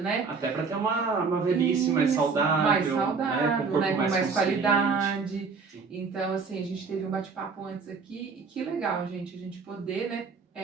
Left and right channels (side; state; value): left; quieter; 5.0 dB